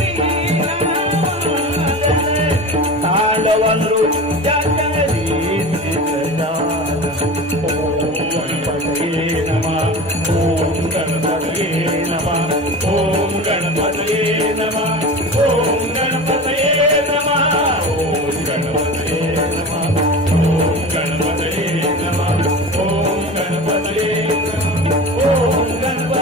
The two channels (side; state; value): both; normal; correlation 0.32